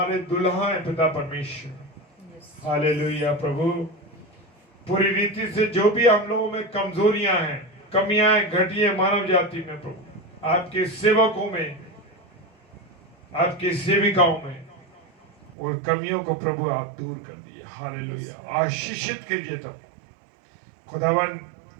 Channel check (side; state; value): left; drops out; at 15.5 s